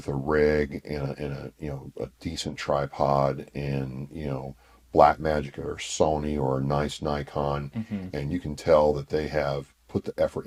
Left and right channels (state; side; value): identical; both; correlation 1.00